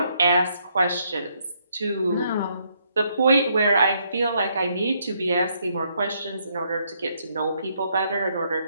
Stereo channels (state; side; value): inverted; both; correlation -0.73